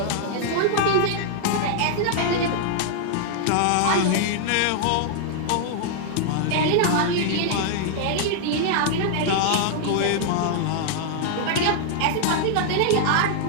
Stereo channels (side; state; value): both; different; correlation -0.01